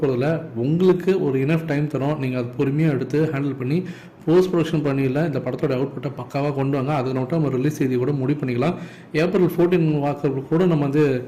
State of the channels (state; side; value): identical; both; correlation 1.00